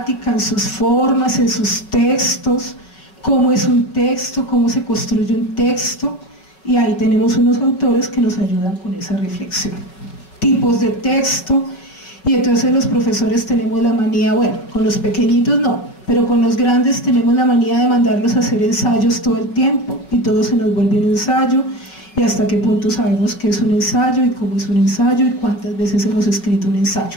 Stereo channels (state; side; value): late; right; 5.4 ms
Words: en sus formas, en sus textos, cómo es un texto, cómo se construye un texto, y ahí tenemos unos autores que nos ayudan con esa reflexión. Tipos de texto, y entonces los profesores tenemos la manía, bueno, con los pequeñitos no, pero con los grandes tenemos la manía de mandarlos a hacer ensayos todo el tiempo, y todo se nos vuelve un ensayo, y hasta qué punto sabemos qué es un ensayo, y cómo es un ensayo, y cuántas veces hemos escrito un